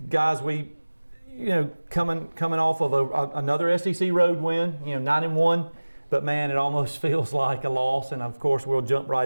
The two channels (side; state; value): both; inverted; correlation -1.00